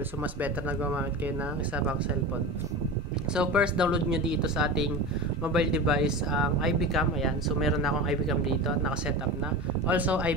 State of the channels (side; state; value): both; normal; correlation 0.28